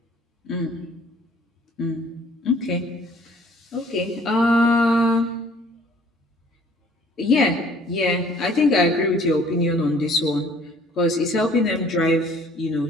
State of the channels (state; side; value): normal; both; correlation 0.56